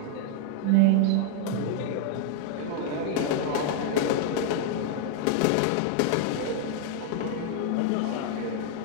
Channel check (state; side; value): different; both; correlation 0.00